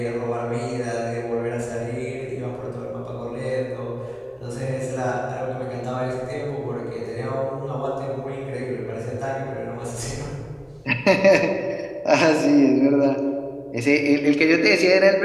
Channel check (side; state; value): both; identical; correlation 1.00